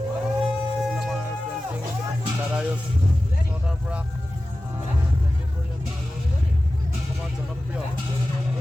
আমাৰ পেইণ্টিং দাদায়ো চৰকাৰৰ পৰা পেইণ্টিং কৰি আছে আৰু অসমৰ জনপ্ৰিয়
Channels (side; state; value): both; normal; correlation 0.95